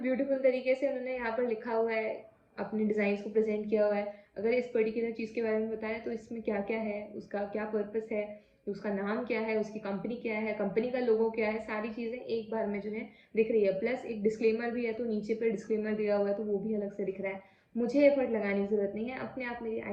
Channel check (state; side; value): identical; both; correlation 1.00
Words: तरीके से उन्होंने यहाँ पर लिखा हुआ है, अपने डिज़ाइंस को प्रेजेंट किया हुआ है। अगर इस पर्टिकुलर चीज़ के बारे में बताएं तो इसमें क्या क्या है, उसका क्या पर्पस है, उसका नाम क्या है, उसकी कंपनी क्या है, कंपनी का लोगो क्या है, सारी चीज़ें एक बार में जो है दिख रही है। प्लस एक डिस्क्लेमर भी है, तो नीचे पर डिस्क्लेमर दिया हुआ है तो वो भी अलग से दिख रहा है। मुझे एफर्ट लगाने की ज़रूरत नहीं है, अपने आप मेरी